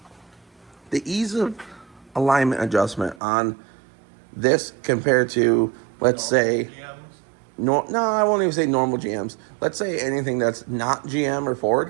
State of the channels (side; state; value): left; drops out; at 3.2 s